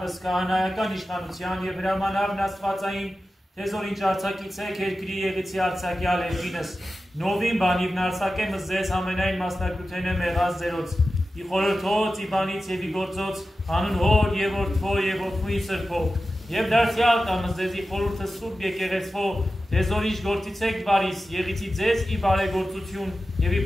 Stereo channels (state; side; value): normal; both; correlation 0.93